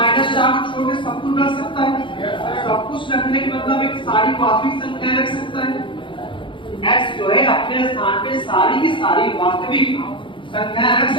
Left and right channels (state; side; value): late; right; 0.24 ms